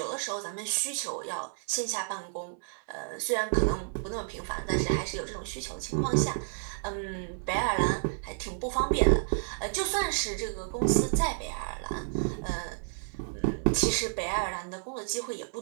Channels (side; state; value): left; silent; 57 dB below the other